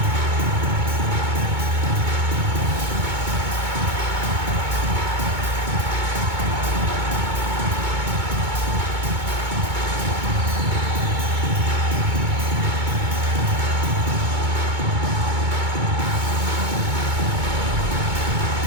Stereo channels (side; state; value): left; late; 2.2 ms